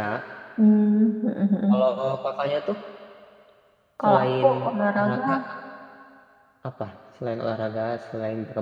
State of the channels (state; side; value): identical; both; correlation 1.00